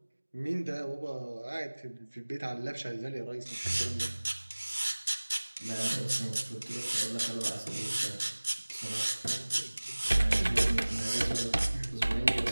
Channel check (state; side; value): inverted; both; correlation -1.00